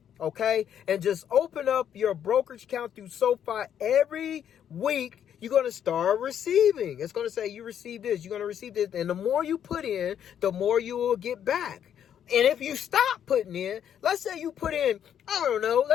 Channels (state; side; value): quieter; right; 9.3 dB